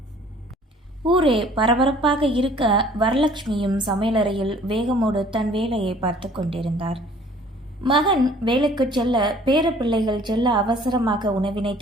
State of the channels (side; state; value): both; normal; correlation 0.53